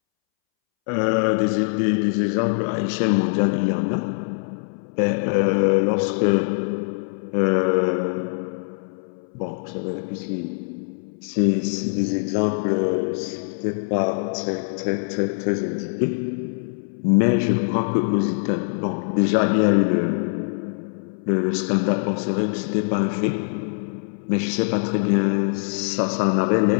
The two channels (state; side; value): silent; right; 63 dB below the other